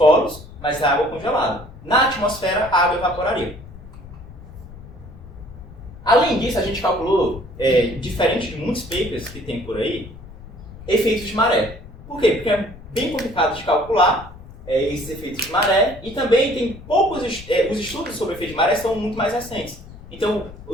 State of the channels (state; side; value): noise; left; rumble, 17 dB below the sound